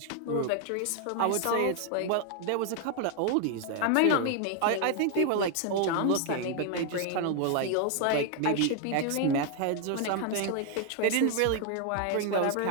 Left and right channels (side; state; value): both; different; correlation 0.00